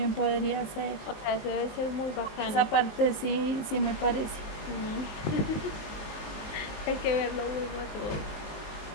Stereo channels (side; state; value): right; late; 19 ms